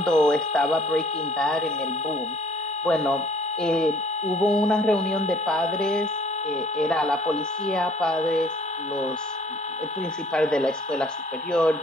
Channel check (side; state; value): both; normal; correlation 0.57